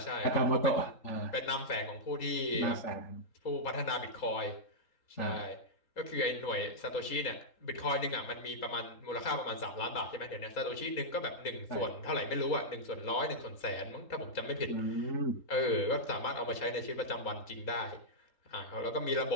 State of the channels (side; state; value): right; late; 3.8 ms